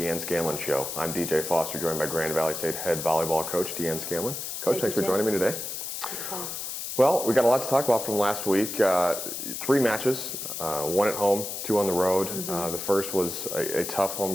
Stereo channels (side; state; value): left; noise; hiss, 6 dB below the sound